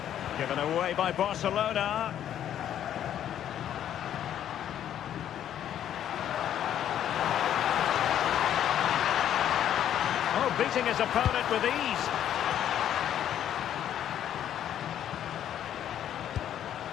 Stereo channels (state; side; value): quieter; right; 10.5 dB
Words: Given away by Barcelona. Oh, beating his opponent with ease.